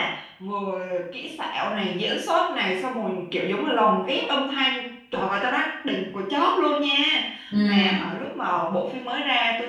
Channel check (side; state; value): both; identical; correlation 1.00